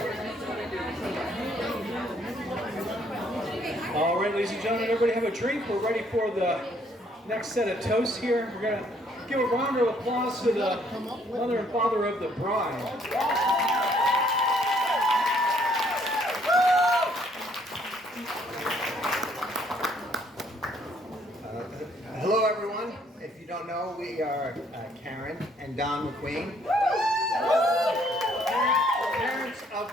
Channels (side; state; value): both; normal; correlation 0.65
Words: All right, ladies and gentlemen, everybody have a drink. We're ready for the next set of toasts here. We're going to give a round of applause to the mother and father of the bride. Hello, everyone. If you don't know, we are Karen and Don McQueen, parents of